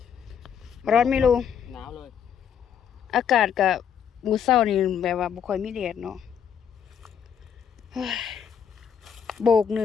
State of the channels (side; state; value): right; quieter; 8.0 dB